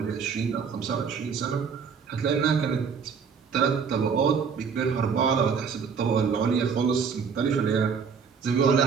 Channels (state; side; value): quieter; left; 6.1 dB